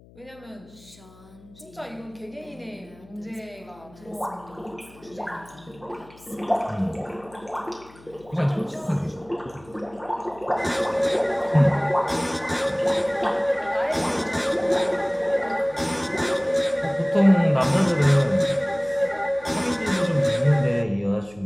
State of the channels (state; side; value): noise; left; hum, 24 dB below the sound